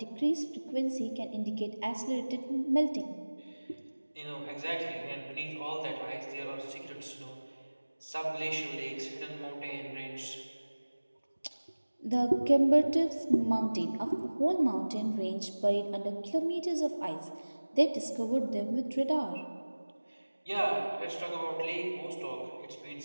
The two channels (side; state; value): both; inverted; correlation -1.00